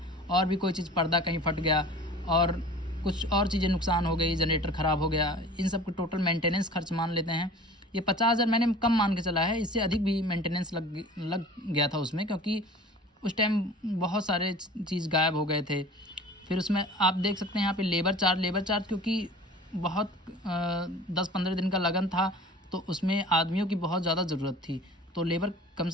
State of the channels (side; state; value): both; normal; correlation 0.43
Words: और भी कोई चीज़ पर्दा कहीं फट गया और कुछ और चीज़ें नुकसान हो गई, जनरेटर ख़राब हो गया, इन सब को टोटल मेंटेनेंस खर्च मान लेते हैं। ये 50,000 मैंने कम मान के चला है, इससे अधिक भी मेंटेनेंस लग गया था उसमें, क्योंकि उस टाइम बहुत सारे चीज़ गायब हो गए थे। फिर उसमें आप देख सकते हैं यहाँ पे लेबर चार्ज क्योंकि बहुत 10-15 दिन का लगन था तो उसमें आदमियों की बहुत ज़्यादा ज़रूरत थी, तो लेबर कम